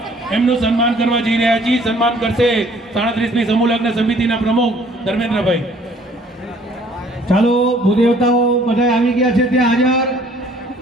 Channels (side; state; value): both; normal; correlation 0.58